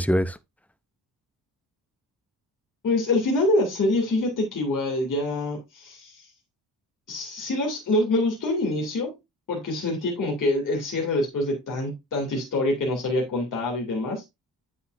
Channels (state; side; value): normal; both; correlation 0.38